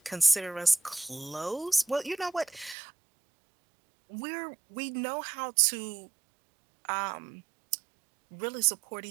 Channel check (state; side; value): drops out; left; at 2.8 s